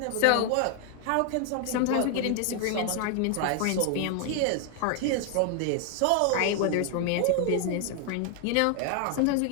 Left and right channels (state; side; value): different; both; correlation 0.00